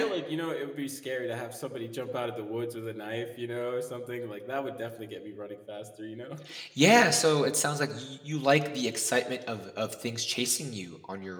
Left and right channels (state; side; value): identical; both; correlation 1.00